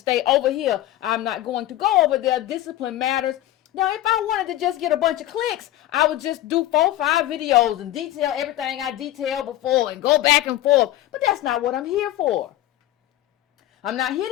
over here. I'm not going to go over there. Discipline matters. Now, if I wanted to just get a bunch of clicks, I would just do 4 or 5 videos and detail everything I detailed before and go back and forth. But that's not what I'm here for. I'm not here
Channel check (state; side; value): quieter; right; 14.3 dB